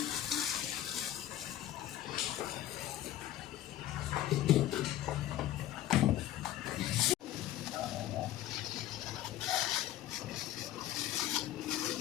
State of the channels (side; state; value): right; quieter; 13.2 dB